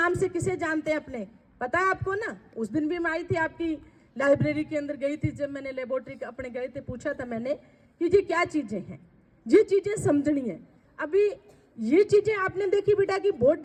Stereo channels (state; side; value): identical; both; correlation 1.00